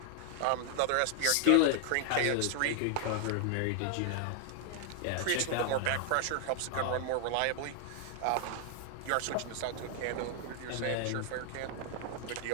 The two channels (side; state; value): both; different; correlation 0.00